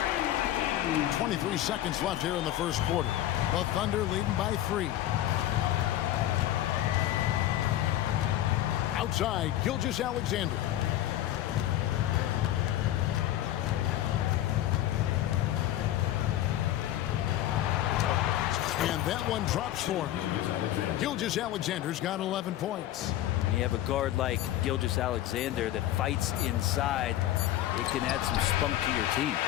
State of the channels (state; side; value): quieter; right; 13.3 dB